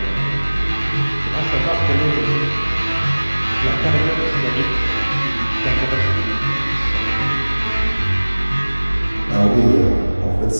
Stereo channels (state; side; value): inverted; both; correlation -1.00